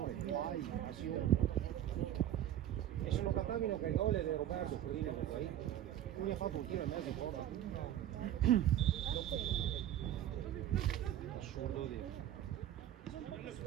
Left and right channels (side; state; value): left; quieter; 11.7 dB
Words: E se lo cattavino che il gol è di Roberto Codina poi, lui ha fatto un tiro e mezzo fuori. Assurdo di